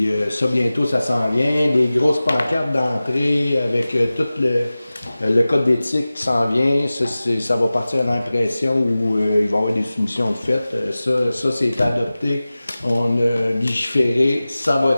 ça, bientôt, ça s'en vient. Des grosses pancartes d'entrée avec tout le code d'éthique qui s'en vient. Ça va partir à l'impression où il va y avoir des soumissions de fait. Ça c'est adopté. On a légiféré. Ça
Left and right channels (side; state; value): both; inverted; correlation -0.97